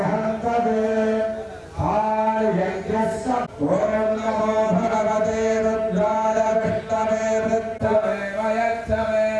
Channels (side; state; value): both; identical; correlation 1.00